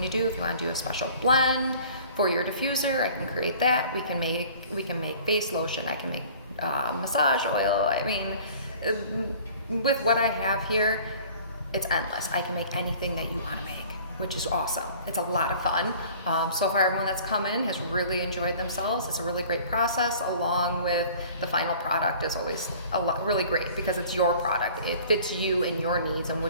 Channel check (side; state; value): both; inverted; correlation -0.48